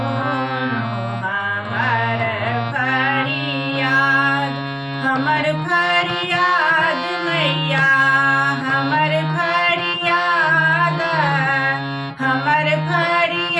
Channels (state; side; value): identical; both; correlation 1.00